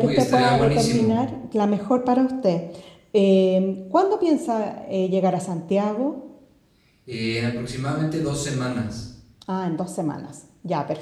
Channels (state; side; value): identical; both; correlation 1.00